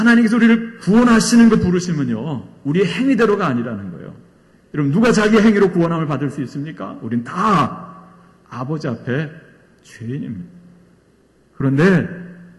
우리를 구원하시는 그 부르심은요, 우리의 행위대로가 아니라는 거예요. 여러분, 누가 자기 행위로 구원함을 받을 수 있습니까? 우린 다 아버지 앞에 죄인입니다. 그런데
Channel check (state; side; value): identical; both; correlation 1.00